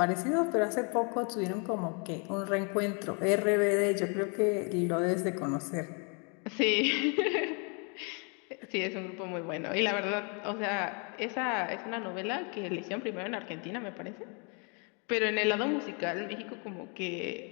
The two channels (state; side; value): quieter; right; 35.7 dB